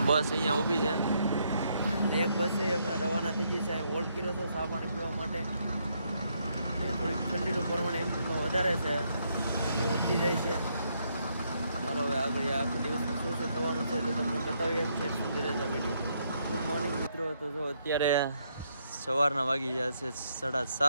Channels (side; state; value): both; inverted; correlation -0.75